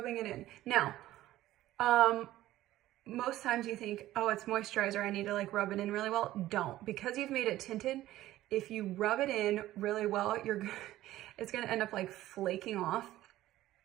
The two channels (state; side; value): quieter; left; 15.0 dB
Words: it in. Now, most times you think, oh, it's moisturizer, I need to like rub it in really well. Don't, because you've made it tinted. If you rub it in really well, it's gonna end up like flaking off.